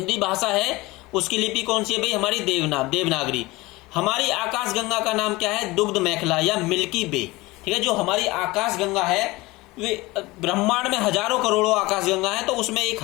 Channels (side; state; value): right; quieter; 21.4 dB